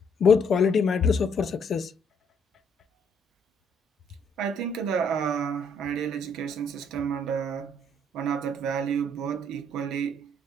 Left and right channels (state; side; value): normal; both; correlation 0.67